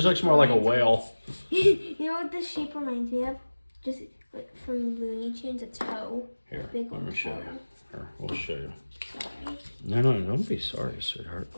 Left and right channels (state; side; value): inverted; both; correlation -1.00